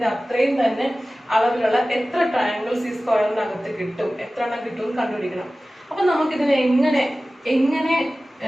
അത്രയും തന്നെ അളവിലുള്ള എത്ര ട്രയാങ്കിൾസ് ഈ സ്ക്വയറിനകത്ത് കിട്ടും, എത്ര എണ്ണം കിട്ടും കണ്ടുപിടിക്കണം. അപ്പൊ നമുക്കിതിനെ എങ്ങനെ എങ്ങനെ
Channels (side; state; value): both; normal; correlation 0.97